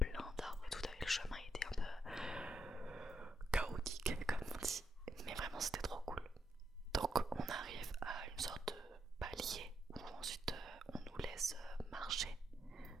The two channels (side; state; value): both; normal; correlation 0.80